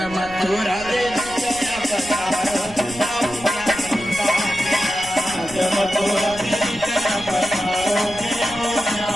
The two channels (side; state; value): right; noise; rumble, 18 dB below the sound